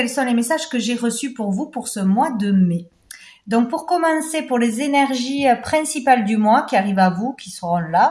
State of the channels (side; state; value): both; identical; correlation 1.00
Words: sont les messages que j'ai reçus pour vous pour ce mois de mai. Donc pour commencer, pour les énergies principales du mois qui arrivent à vous, qui seront